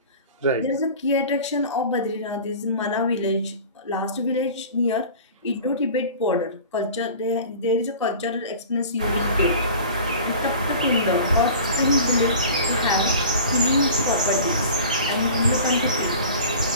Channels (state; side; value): inverted; both; correlation -0.40